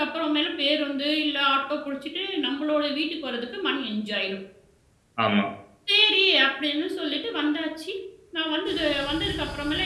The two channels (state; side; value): identical; both; correlation 1.00